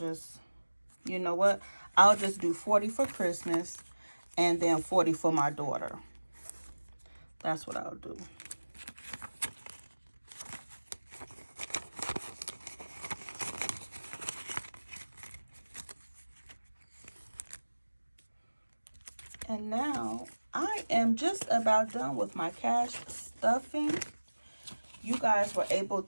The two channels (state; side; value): inverted; both; correlation -1.00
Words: you know what? I'll just do 40 for Christmas and then 40 for my daughter. That's what I'll do. And now I am just about done with my cash stuffing. You guys were able